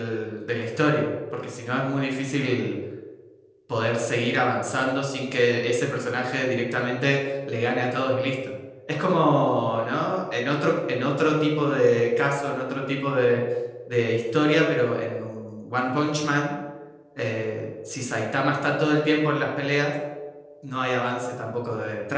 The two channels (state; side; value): identical; both; correlation 1.00